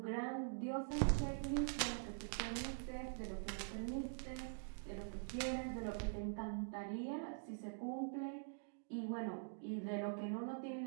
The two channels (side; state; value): left; silent; digital silence